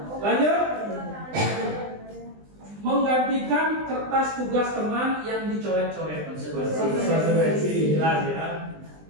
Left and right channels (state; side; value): late; left; 20 ms